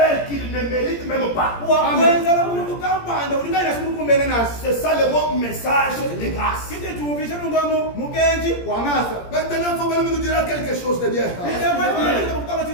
qu'il ne mérite même pas. C'est ça le mot message de grâce. Maintenant, il faut même nous dire quelque chose de bien.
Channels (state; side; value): late; right; 17 ms